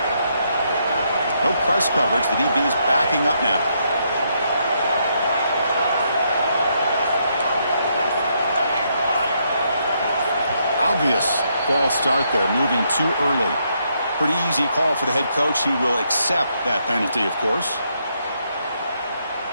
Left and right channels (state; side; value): inverted; both; correlation -0.76